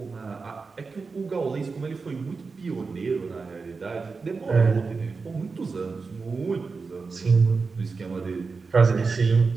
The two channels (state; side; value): quieter; left; 4.5 dB